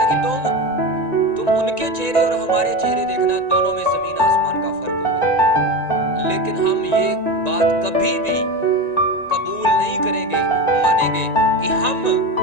कि तुम उनके चेहरे और हमारे चेहरे देखना, दोनों में जमीन आसमान का फर्क होगा। लेकिन हम ये बात कभी भी कबूल नहीं करेंगे, मानेंगे कि हम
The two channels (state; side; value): late; right; 1.9 ms